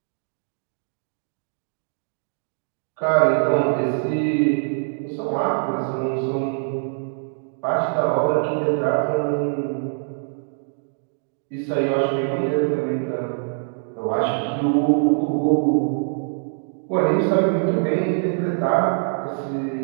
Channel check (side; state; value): left; silent; digital silence